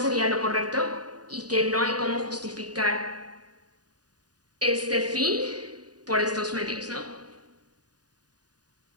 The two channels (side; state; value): left; late; 0.68 ms